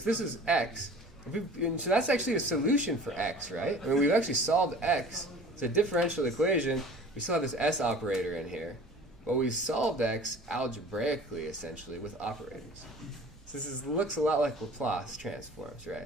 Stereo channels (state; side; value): normal; both; correlation 0.44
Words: this is x. And so that's actually a solution for x, right? I mean, we've actually solved x. It's a differential equation. We still have this s operator in here. But we solved x algebraically, essentially, with operators. So looks a lot like Laplace transforms,